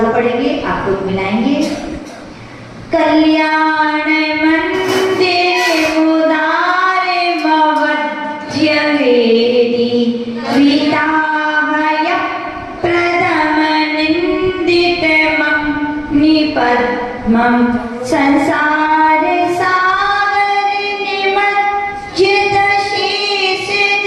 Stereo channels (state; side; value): identical; both; correlation 1.00